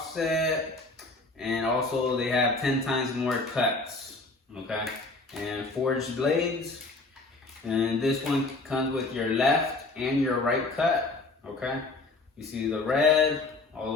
and also they have 10 times more cuts. Okay, and forged blades. And this one comes with your left and your right cut. Okay, you see the red all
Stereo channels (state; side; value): quieter; right; 3.3 dB